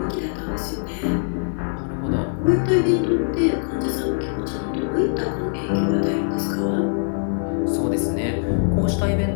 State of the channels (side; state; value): right; silent; digital silence